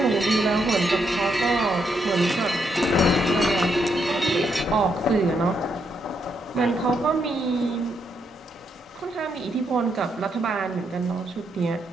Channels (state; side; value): normal; both; correlation 0.78